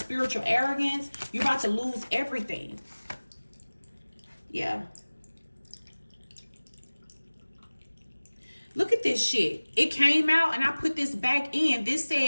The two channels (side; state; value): both; inverted; correlation -1.00